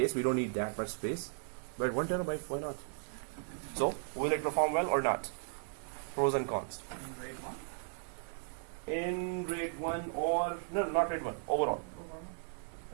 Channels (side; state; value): left; silent; 54 dB below the other